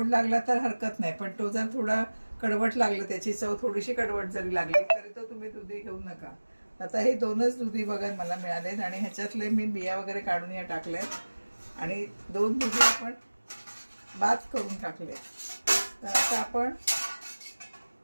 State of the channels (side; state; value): both; inverted; correlation -1.00